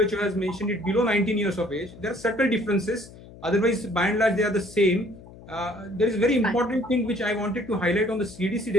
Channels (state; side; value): noise; left; hum, 19 dB below the sound